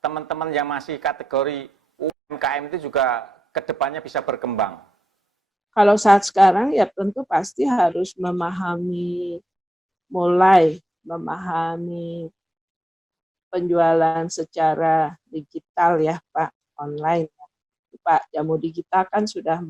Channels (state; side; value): normal; both; correlation 0.88